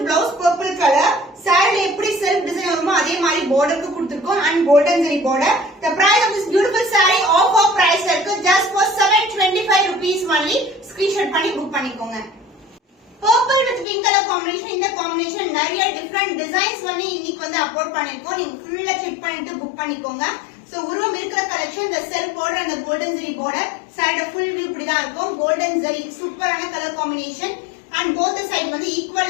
blouse purple color saree எப்படி self design வருமோ அதே மாதிரி border க்கு கொடுத்திருக்கோம் and golden zari border. The price of this beautiful saree offer price இருக்கு just for 725 rupees only. Screenshot பண்ணி book பண்ணிக்கோங்க. Purple with pink color combination, இந்த combination நிறைய different designs வந்து இன்னைக்கு வந்து அப்லோட் பண்ணிருக்கோம். நீங்க ஃபுல்லா செக் பண்ணிட்டு book பண்ணிக்கோங்க. So உருவம் இருக்கிற collection the self border and the golden zari border saree full view இப்படிதான் இருக்கும். golden zari சூப்பரான color combination and both the side வந்து equal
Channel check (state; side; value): drops out; right; at 13.9 s